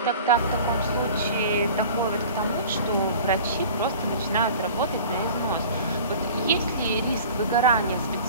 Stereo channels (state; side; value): inverted; both; correlation -0.42